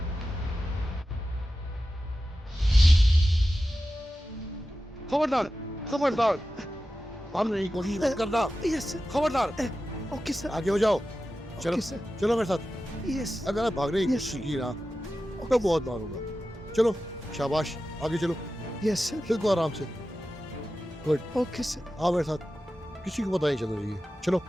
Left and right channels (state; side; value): normal; both; correlation 0.93